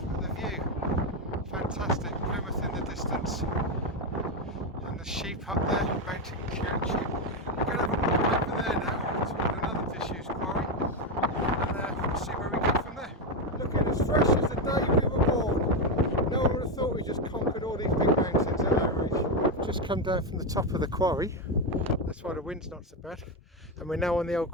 but the view, fantastic. Plymouth in the distance, and the sheep up there, mountain sheep. We're going to have a walk over there now toward another disused quarry, and we'll see where we go from there. Looking as fresh as the day we were born. No one would have thought we just conquered all these big mountains at our age. We've just come down from the top of the quarry. That's why the wind's not so bad. And we're now on the old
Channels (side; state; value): both; normal; correlation 0.09